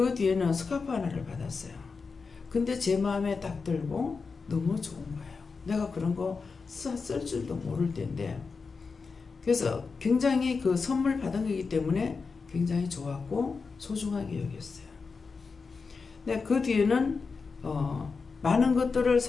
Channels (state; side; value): quieter; right; 4.8 dB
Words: 뒤에는 스카프 하나를 받았어요. 근데 제 마음에 딱 들고 너무 좋은 거예요. 내가 그런 거 쓸 줄도 모를 텐데. 그래서 굉장히 그 선물 받은 거기 때문에 굉장히 좋았고 소중하게 여겼어요. 근데 그 뒤에는 많은 것들을